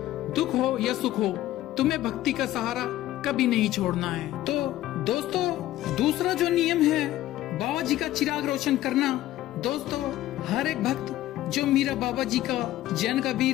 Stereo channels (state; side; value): quieter; right; 14.7 dB